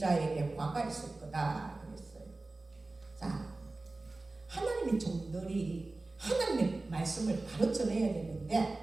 화가 있을 거다 그랬어요. 자, 하나님의 종들이 하나님의 말씀을 바로 전해야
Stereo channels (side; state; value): left; quieter; 3.2 dB